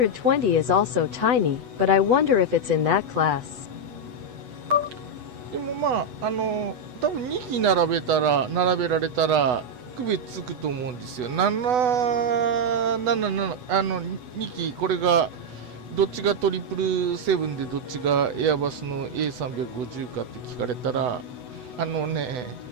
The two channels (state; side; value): late; left; 8.1 ms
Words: is also tiny, but I wonder if it's in that class. でもまあ多分2機並べられたら区別つくと思うんですよ。777 2機、これがどっちが777でどっちがエアバスの A350 かって聞かれたら、